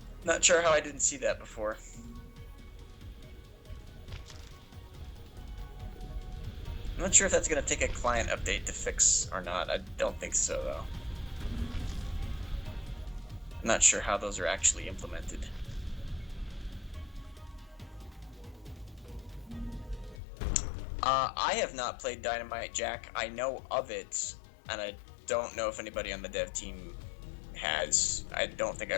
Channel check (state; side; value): drops out; right; at 20.2 s